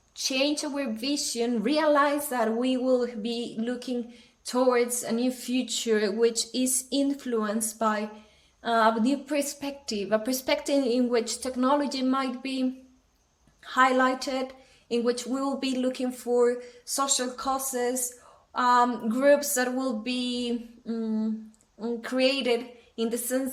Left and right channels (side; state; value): both; identical; correlation 1.00